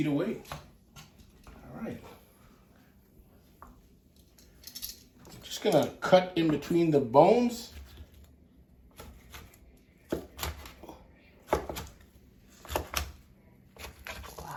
away. All right. Just gonna cut in between the bones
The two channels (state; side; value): identical; both; correlation 1.00